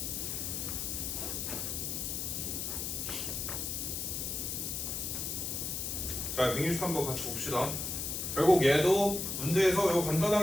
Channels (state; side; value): noise; left; hiss, 3 dB below the sound